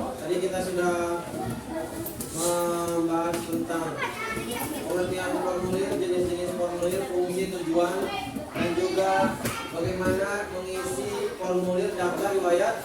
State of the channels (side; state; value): both; identical; correlation 1.00